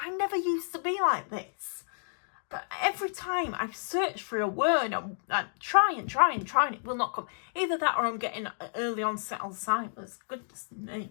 never used to be like this. But every time I search for a word, I try and it will not come. Either that or I'm getting early onset Alzheimer's. Goodness me.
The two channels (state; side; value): silent; right; digital silence